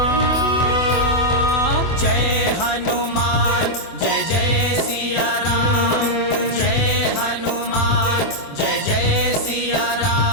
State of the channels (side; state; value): right; late; 24 ms